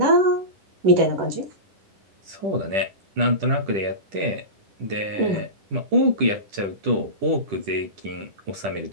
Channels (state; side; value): late; left; 10 ms